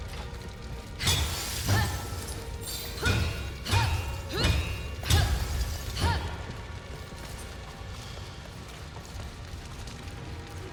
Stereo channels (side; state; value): both; identical; correlation 1.00